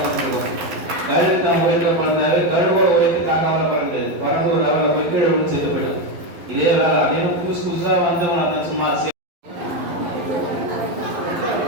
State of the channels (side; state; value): left; late; 11 ms